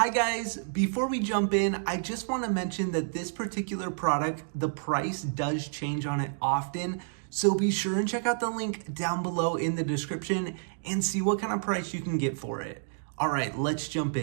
Hi guys, before we jump in, I just want to mention that this particular product, the price does change on it often. So be sure and check out the link down below in the description and see what kind of price you can get for it. All right, let's jump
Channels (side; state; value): left; silent; digital silence